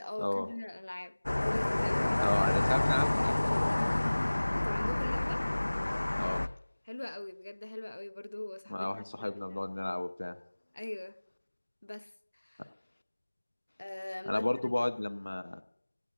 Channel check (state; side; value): inverted; both; correlation -1.00